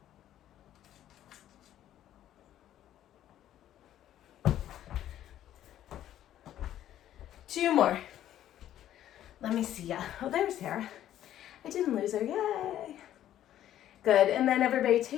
Two more. Let me see ya. Oh, there's Sarah. I didn't lose her, yay. Good, and then everybody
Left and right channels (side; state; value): right; quieter; 11.9 dB